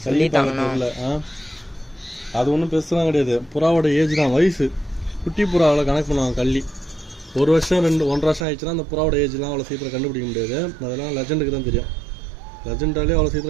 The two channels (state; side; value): drops out; left; at 8.5 s